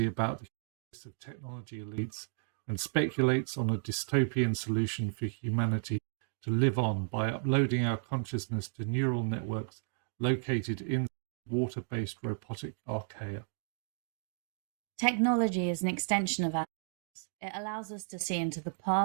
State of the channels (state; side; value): silent; left; digital silence